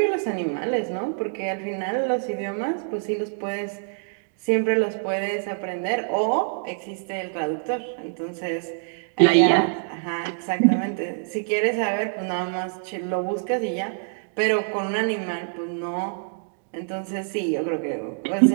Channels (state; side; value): silent; left; digital silence